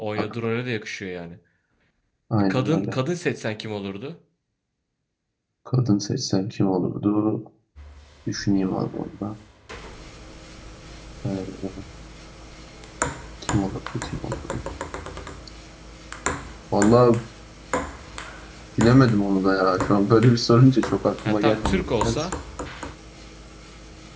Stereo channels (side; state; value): both; identical; correlation 1.00